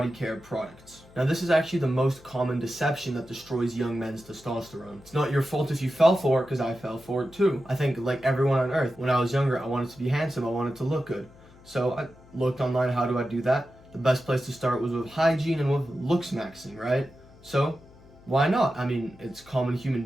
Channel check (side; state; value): left; noise; hum, 24 dB below the sound